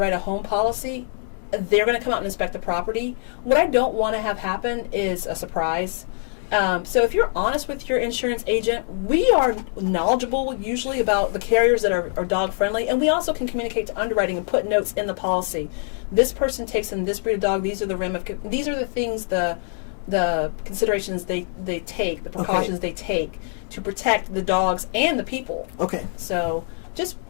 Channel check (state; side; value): silent; right; 63 dB below the other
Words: a home policy, they're going to come out and inspect the property. What I don't want to have happen is a surprise. So if you're honest with your insurance agent, we are knowledgeable usually about the carriers that are dog friendly, and we also can communicate to underwriting and put notes in the policy. This person takes in this breed of dog. These are the things, the considerations they take, the precautions they take to protect the dogs and the people. Okay. So just